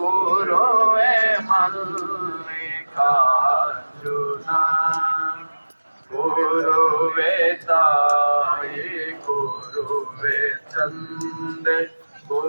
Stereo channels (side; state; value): both; inverted; correlation -1.00